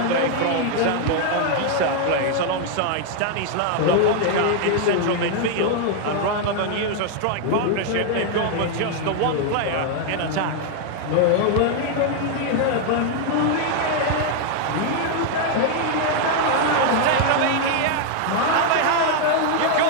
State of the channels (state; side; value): different; both; correlation 0.00